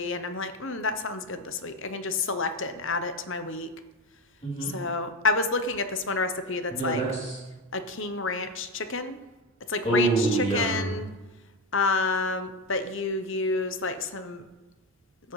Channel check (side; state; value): both; normal; correlation 0.15